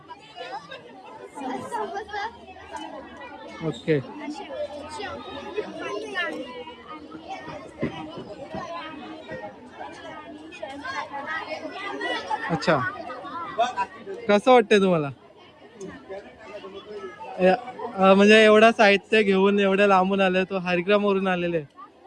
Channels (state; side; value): identical; both; correlation 1.00